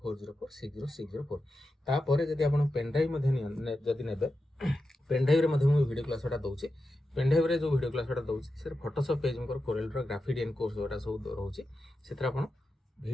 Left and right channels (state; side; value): normal; both; correlation 0.90